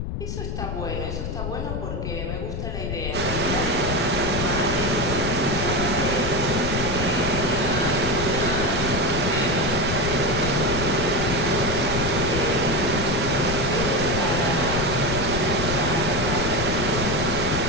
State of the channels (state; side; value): noise; left; rumble, 4 dB below the sound